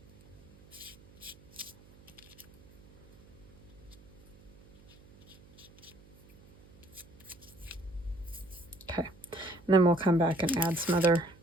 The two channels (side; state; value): right; noise; hum, 24 dB below the sound